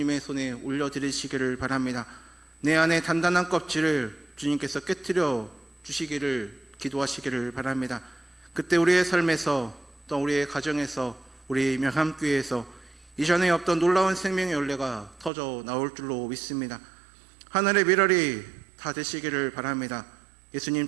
손에 올려드리시기를 바랍니다. 내 안에 단단한 껍질을 주님께서 깨트려 주시기를 기도하시기를 바랍니다. 그때 우리의 삶에서 또 우리의 가정에서 우리 명함교회에서 이전에 없던 놀라운 생명의 열매가 터져 나올 줄로 믿습니다. 하늘의 미랄이 다 되시기를 바랍니다.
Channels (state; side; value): drops out; left; at 15.3 s